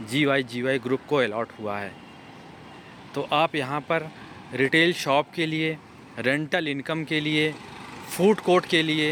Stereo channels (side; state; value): both; identical; correlation 1.00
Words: GY ग्रुप को अलॉट हुआ है। तो आप यहाँ पर रिटेल शॉप के लिए, रेंटल इनकम के लिए, फूड कोर्ट के